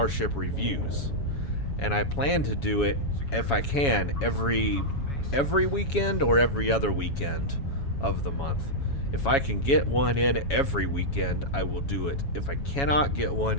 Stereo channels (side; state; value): right; late; 7.2 ms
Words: reviews. And I plan to do it, if I can, every weekend or every other weekend of the month. If I can get one in every weekend, I will do it. If I cannot get one